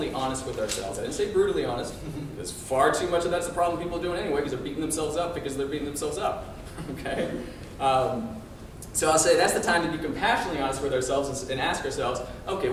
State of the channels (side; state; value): both; identical; correlation 1.00